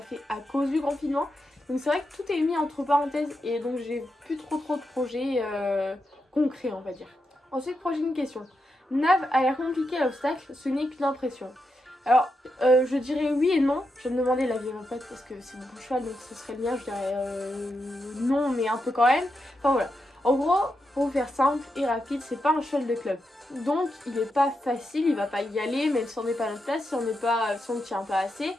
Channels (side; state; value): both; normal; correlation 0.85